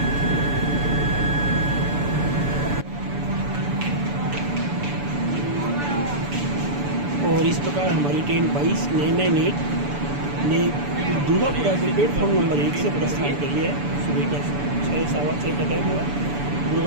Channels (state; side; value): late; left; 6.9 ms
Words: और इस प्रकार हमारी ट्रेन 22-998 ने दुर्गापुरा के प्लेटफॉर्म नंबर 1 से प्रस्थान कर लिया है। सुबह का 6-6:15 का टाइम हुआ।